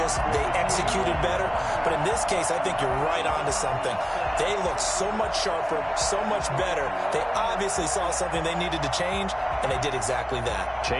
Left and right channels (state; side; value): identical; both; correlation 1.00